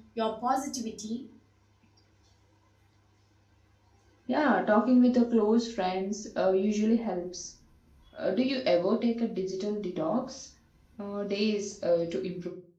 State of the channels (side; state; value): both; identical; correlation 1.00